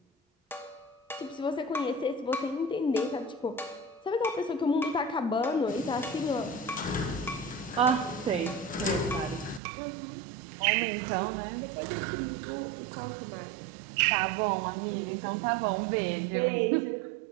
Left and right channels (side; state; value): left; drops out; at 9.6 s